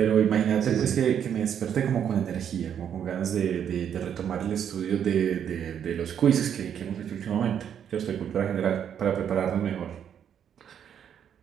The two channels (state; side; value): quieter; left; 8.8 dB